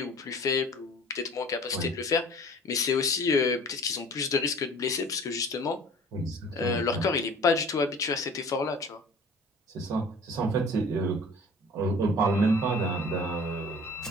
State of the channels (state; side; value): normal; both; correlation 0.46